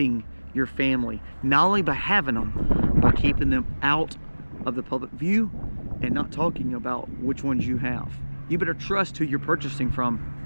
your family, not only by having them, by keeping them out of the public view and not talking about which ones you have. You better trust who you're purchasing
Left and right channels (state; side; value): inverted; both; correlation -1.00